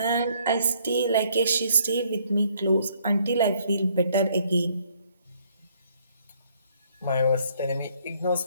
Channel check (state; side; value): inverted; both; correlation -0.66